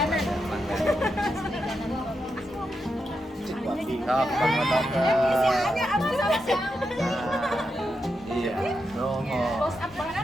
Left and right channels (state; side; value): normal; both; correlation 0.85